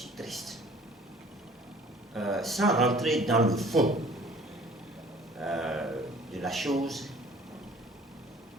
triste. Sans rentrer dans le fond de la chose,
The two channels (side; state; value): both; normal; correlation 0.51